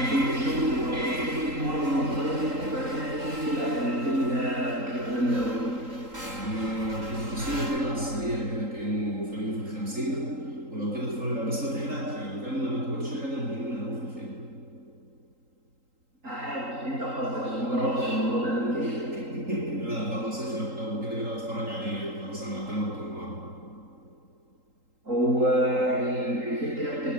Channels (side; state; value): left; late; 3.8 ms